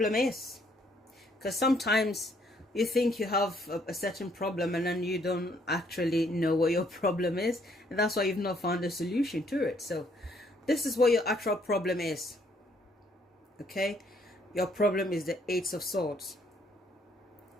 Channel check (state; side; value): normal; both; correlation 0.67